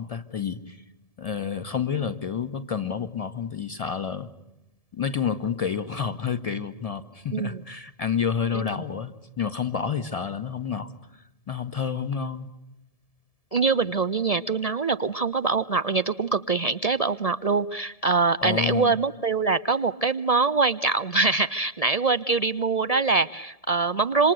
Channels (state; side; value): late; right; 1.7 ms